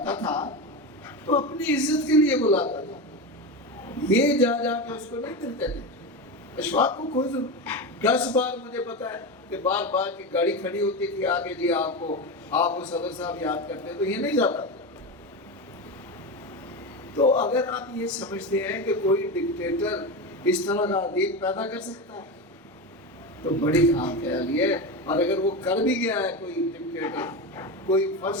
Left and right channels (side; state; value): both; normal; correlation 0.19